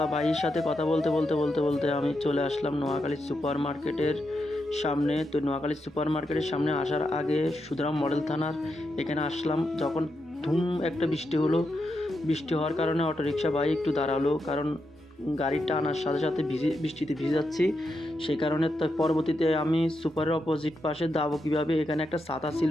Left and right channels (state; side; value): normal; both; correlation 0.85